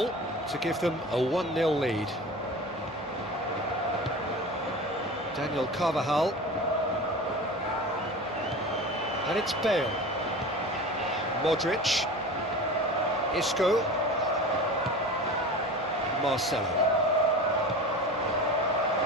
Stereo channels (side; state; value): both; normal; correlation 0.34